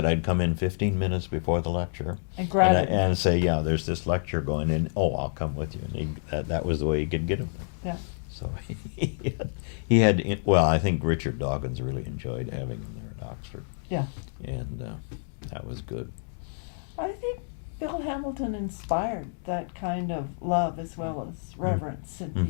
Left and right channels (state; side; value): silent; right; digital silence